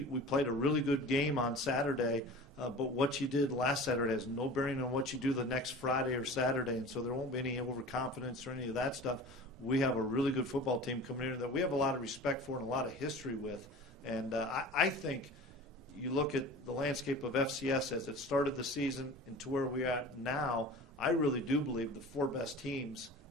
a really good game on Saturday, but what you did last Saturday has no bearing on what you do the next Friday or Saturday, and so there won't be any overconfidence or any of that stuff. We have a really good football team coming in that we have a lot of respect for and a lot of history with. And I think you look at the landscape of FCS as it started the season and to where we are at now, I really do believe the four best teams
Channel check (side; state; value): both; normal; correlation 0.38